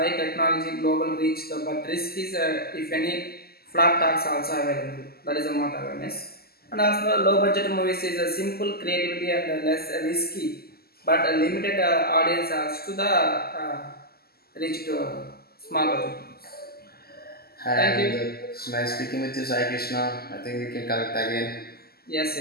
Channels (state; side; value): late; right; 0.45 ms